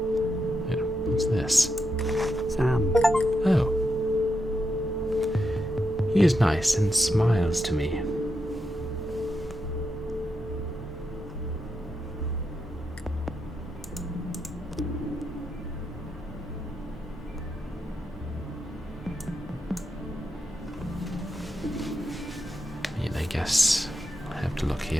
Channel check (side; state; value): both; normal; correlation 0.85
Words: What's this? Sam. Oh. He is nice and smiles to me. I guess I have to look